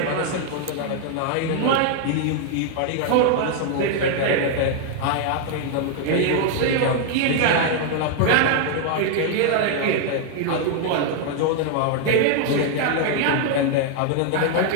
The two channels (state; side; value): different; both; correlation 0.00